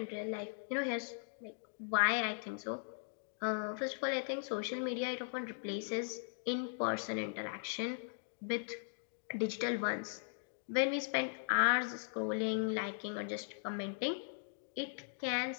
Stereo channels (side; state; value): right; silent; digital silence